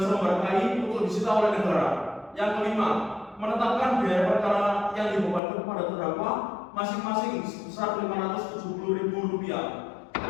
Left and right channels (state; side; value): drops out; right; at 5.4 s